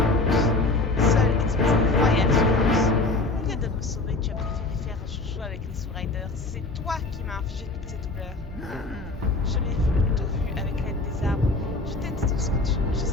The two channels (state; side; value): quieter; right; 3.2 dB